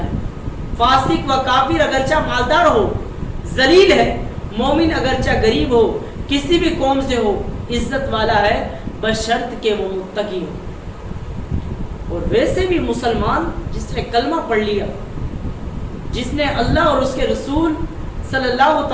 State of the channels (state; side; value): identical; both; correlation 1.00